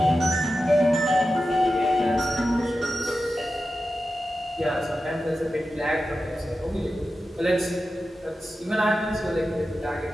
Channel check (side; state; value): both; normal; correlation 0.92